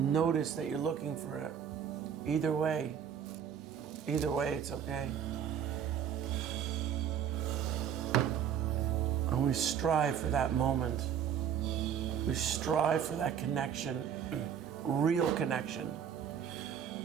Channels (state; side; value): quieter; left; 8.5 dB